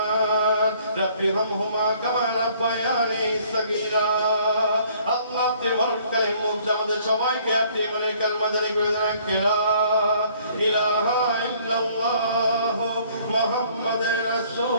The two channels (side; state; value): both; inverted; correlation -0.59